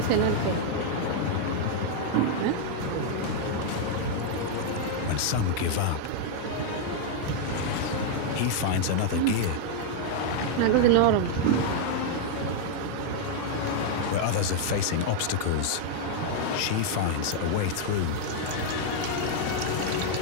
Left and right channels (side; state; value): both; different; correlation 0.00